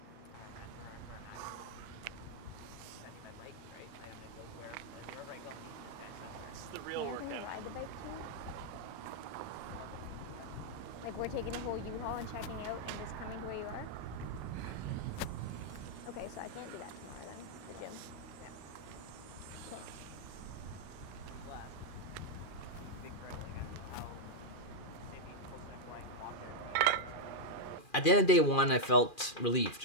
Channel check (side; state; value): right; late; 2.4 ms